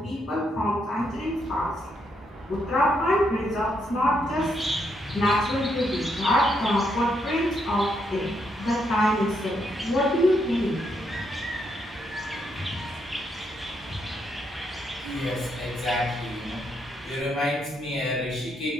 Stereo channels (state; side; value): normal; both; correlation 0.77